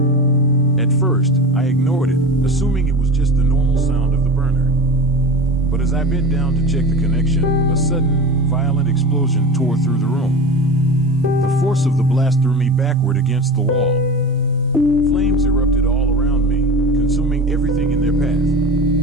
At first, I ignored it, assuming it was just the normal sound of the burner. But as I bent down to check the connection, a sudden, violent explosion tore through the room. The force of the blast threw me backward against the wall. Flames erupted all around me, consuming everything in their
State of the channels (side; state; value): both; normal; correlation 0.30